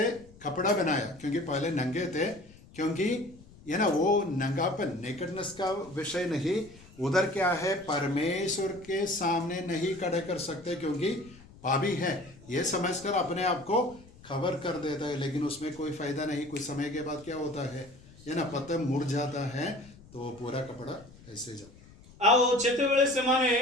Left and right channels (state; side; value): noise; left; rumble, 22 dB below the sound